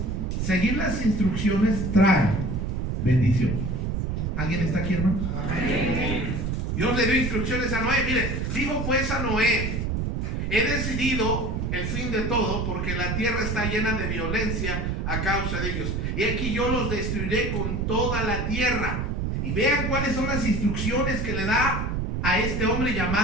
seguir las instrucciones trae bendición. ¿Alguien está aquí, hermano? Amén. Dios le dio instrucciones a Noé. Mire, dijo pues a Noé: he decidido el fin de todo, porque la tierra está llena de violencia a causa de ellos. Y aquí yo los destruiré con toda la tierra. Y vean cuáles son las instrucciones que le da a este hombre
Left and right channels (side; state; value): right; noise; rumble, 1 dB below the sound